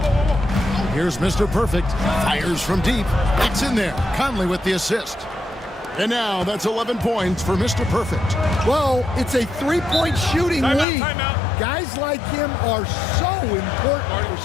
Here's Mr. Perfect. Fires from deep. It's in there. Conley with the assist. And now that's 11 points for Mr. Perfect. Well, it's a three-point shooting lead. Guys like him are so important for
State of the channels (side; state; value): right; drops out; at 10.9 s